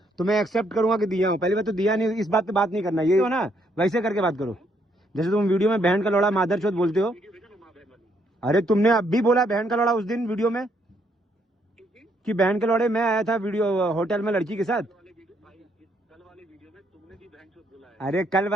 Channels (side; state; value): both; normal; correlation 0.72